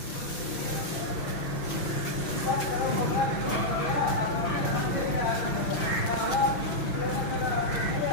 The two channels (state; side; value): late; right; 6.1 ms